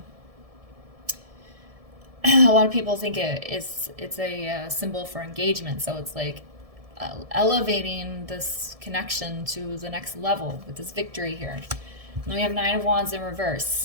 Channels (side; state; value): left; late; 1.7 ms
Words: think it's a symbol for engagement. So it's like elevating this connection to the next level with this victory here. And then we have 9 of Wands in